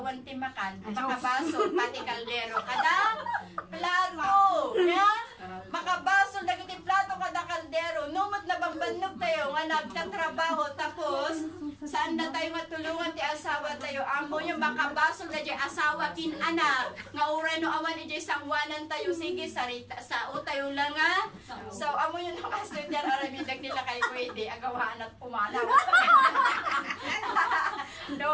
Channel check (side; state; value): both; identical; correlation 1.00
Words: ti makan, makabaso, pati kaldero, kada plato, nga, makabaso, dagiti plato, kada kaldero, numot na bambanog tayo, nga nagtatrabaho, tapos, saan na tayo matulungan ti asawa tayo, amo yung makabaso, na di asawa kin anak, nga uray no awan ijay sangwanan tayo, sige, sarita, sao tayo lang nga, so, amo yung nakastudyan, arabidag nila kay pwede, agawaan at pumalaw.